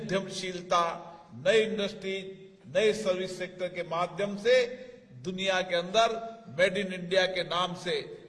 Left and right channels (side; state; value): both; identical; correlation 1.00